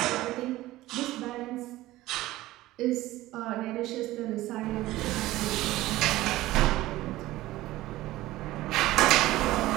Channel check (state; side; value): quieter; left; 16.9 dB